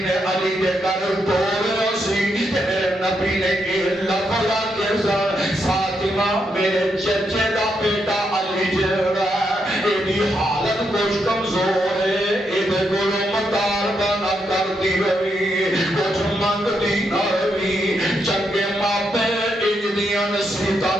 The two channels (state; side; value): normal; both; correlation 0.80